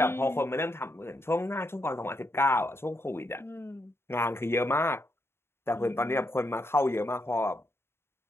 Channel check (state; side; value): late; right; 0.12 ms